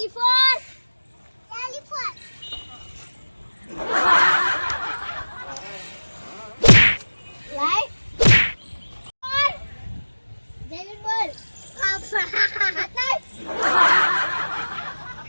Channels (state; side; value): inverted; both; correlation -1.00